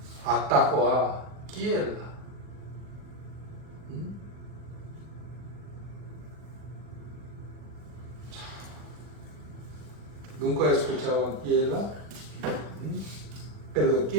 atacó a Keilah. ¿Nunca escuchaban Keilah?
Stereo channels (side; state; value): left; late; 40 ms